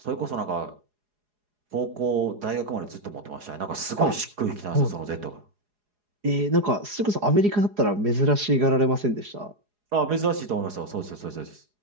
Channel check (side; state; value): left; late; 4.8 ms